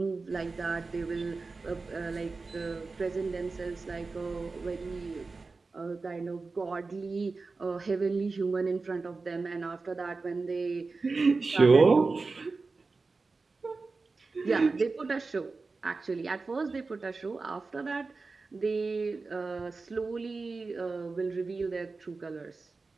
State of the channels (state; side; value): quieter; left; 4.0 dB